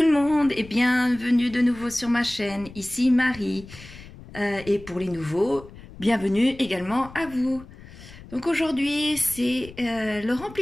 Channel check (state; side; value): noise; left; rumble, 18 dB below the sound